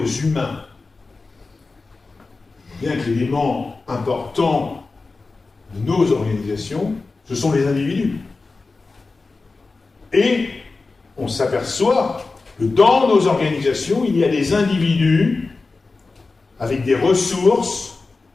humains. Bien que l'élément important de nos organisations, ce sont les individus. Et on s'aperçoit que dans nos organisations, il y a des individus avec des ressources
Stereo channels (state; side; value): quieter; right; 3.8 dB